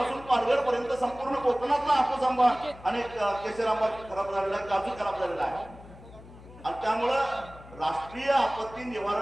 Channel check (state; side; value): noise; left; hum, 19 dB below the sound